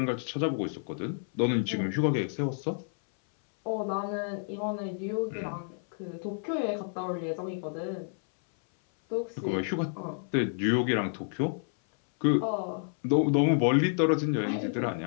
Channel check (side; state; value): right; silent; 58 dB below the other